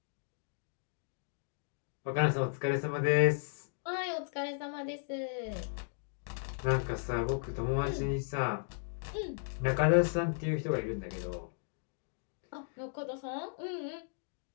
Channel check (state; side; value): silent; right; digital silence